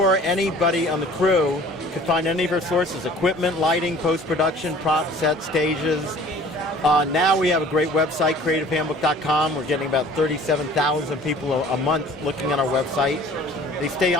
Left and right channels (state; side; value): normal; both; correlation 0.49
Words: anybody on the crew, you can find any of our sources: equipment, lighting, post-production, prop sets, stages. Now we have a great website, CreativeHandbook.com. We're getting about 37,000 people a month looking at our website. They stay